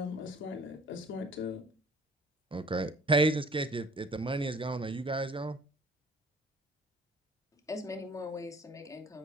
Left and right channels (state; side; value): normal; both; correlation 0.52